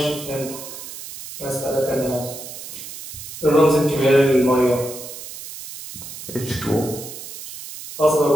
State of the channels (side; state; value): right; noise; hiss, 12 dB below the sound